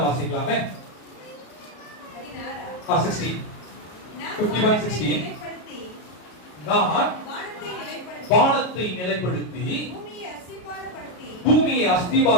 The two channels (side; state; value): right; late; 33 ms